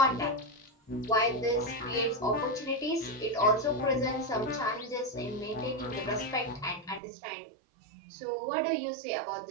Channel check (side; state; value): left; drops out; at 7.0 s